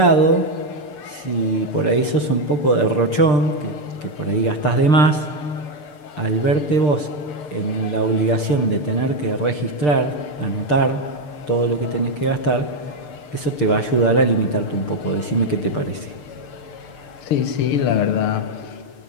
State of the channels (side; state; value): right; late; 6.7 ms